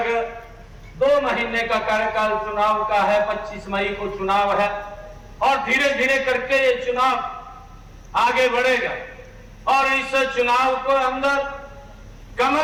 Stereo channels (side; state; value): both; identical; correlation 1.00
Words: 2 महीने का कार्यकाल चुनाव का है, 25 मई को चुनाव है और धीरे धीरे करके ये चुनाव आगे बढ़ेगा और इस चुनाव को अंदर